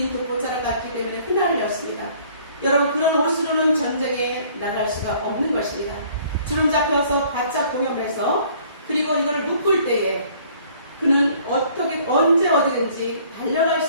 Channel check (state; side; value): inverted; both; correlation -0.57